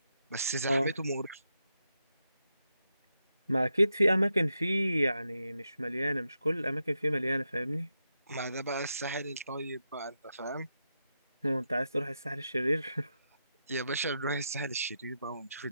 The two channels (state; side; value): inverted; both; correlation -0.85